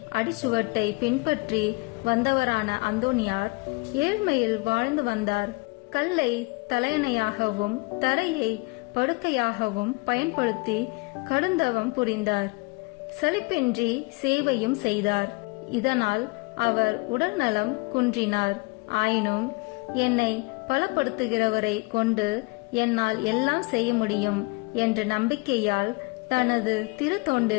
அடிச்சுவட்டை பின்பற்றி வந்தவரான அந்தோனியார் ஏழ்மையில் வாழ்ந்து வந்தார். கல்லை தலையணையாகவும் தரையை படுக்கையாகவும் பயன்படுத்தி கடுந்தவம் புரிந்தார். சலிப்பின்றி சேவையும் செய்தார். இதனால் அவர் உடல் நலம் குன்றினார். ஆயினும் என்னை பலப்படுத்துகிறவரை கொண்டு என்னால் எல்லாம் செய்ய முடியும் என்ற நம்பிக்கையால் தனது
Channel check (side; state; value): right; quieter; 27.5 dB